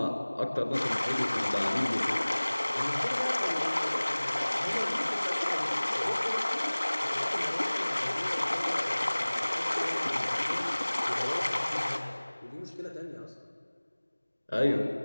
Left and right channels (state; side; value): inverted; both; correlation -1.00